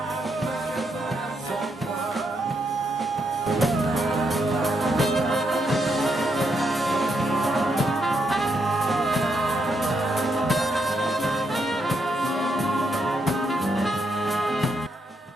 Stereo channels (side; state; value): both; normal; correlation 0.79